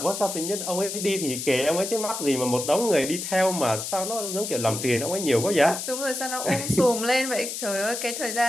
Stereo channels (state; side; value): noise; left; hiss, 5 dB below the sound